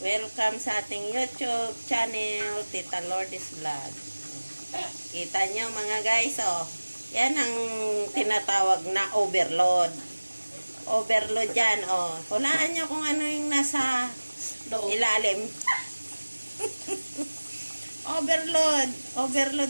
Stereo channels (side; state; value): both; inverted; correlation -1.00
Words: sa ating YouTube channel, Tita Lourdes Vlog. Kita nyo mga guys, oh. Yan ang tinatawag na overload. Overload yan, oh. Hulaan nyo kung ano yung nasa ilalim. Overload.